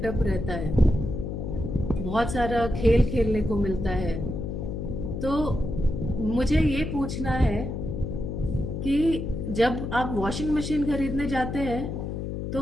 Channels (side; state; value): left; noise; hum, 4 dB below the sound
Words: रहता है, बहुत सारा खेल खेलने को मिलता है। तो मुझे ये पूछना है कि जब आप वॉशिंग मशीन खरीदने जाते हैं तो